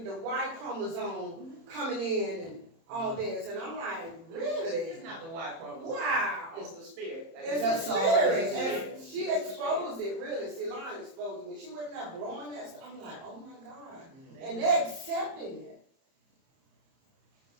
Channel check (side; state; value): left; late; 30 ms